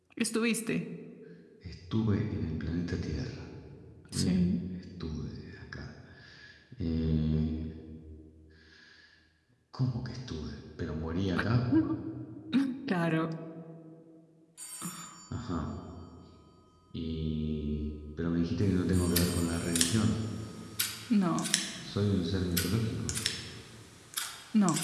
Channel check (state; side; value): identical; both; correlation 1.00